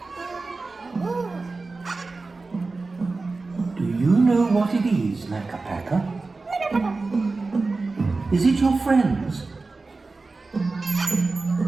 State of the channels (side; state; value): left; quieter; 3.7 dB